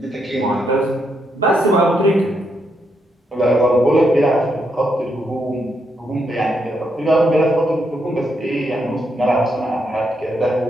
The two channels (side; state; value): both; normal; correlation 0.79